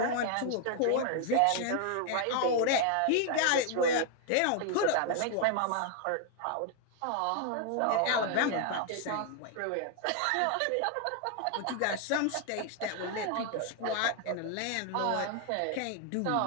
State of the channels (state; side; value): different; both; correlation 0.00